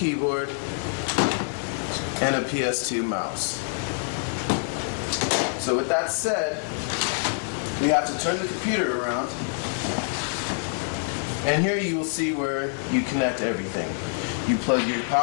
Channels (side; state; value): right; silent; digital silence